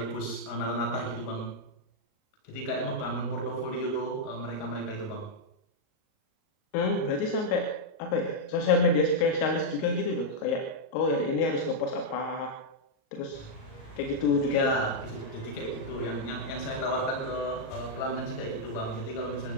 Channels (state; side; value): late; right; 38 ms